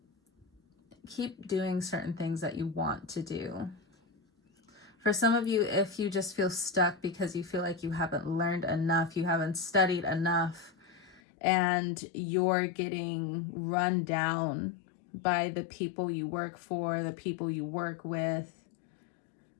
Keep doing certain things that you want to do. For some of you, if you just feel stuck because you feel like you haven't learned enough, you haven't studied enough, and you're getting run down by the people you work for, the people you work with.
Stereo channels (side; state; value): right; drops out; at 11.2 s